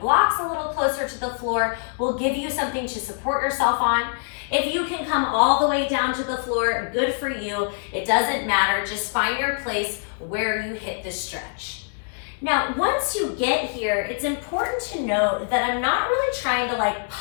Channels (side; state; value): right; silent; digital silence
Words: a little closer to the floor will give you something to support yourself on. If you can come all the way down to the floor, good for you. It doesn't matter. Just find your place where you hit the stretch. Now, once you get here, it's important to note that I'm not really trying to